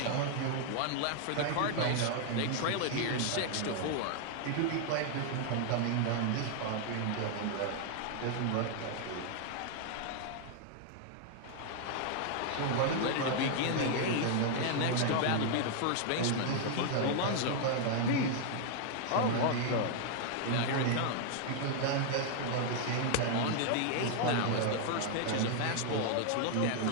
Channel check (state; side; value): different; both; correlation 0.00